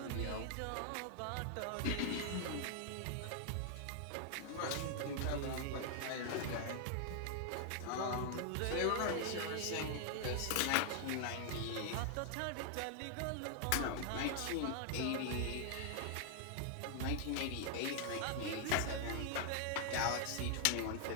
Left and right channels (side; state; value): both; different; correlation 0.00